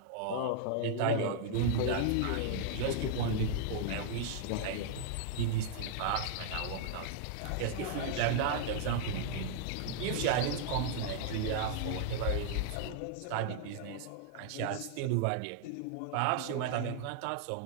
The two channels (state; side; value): different; both; correlation -0.01